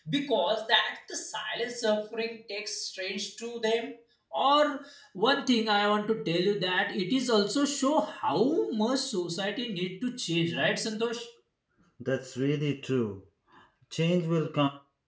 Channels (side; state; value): both; identical; correlation 1.00